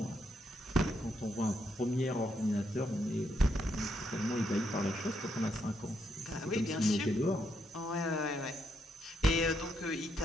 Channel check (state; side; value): normal; both; correlation 0.77